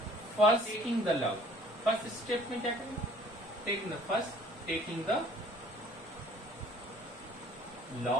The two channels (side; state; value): both; normal; correlation 0.53